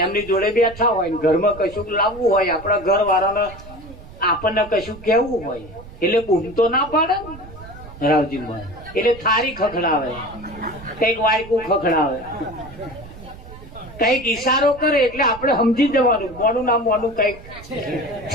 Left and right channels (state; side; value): noise; right; rumble, 17 dB below the sound